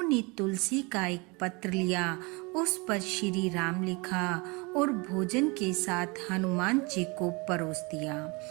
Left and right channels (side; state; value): left; quieter; 28.0 dB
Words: तुलसी का एक पत्र लिया, उस पर श्री राम लिखा और भोजन के साथ हनुमान जी को परोस दिया।